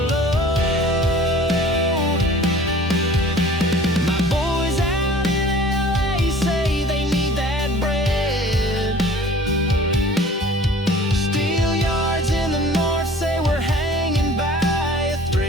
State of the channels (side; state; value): both; normal; correlation 0.48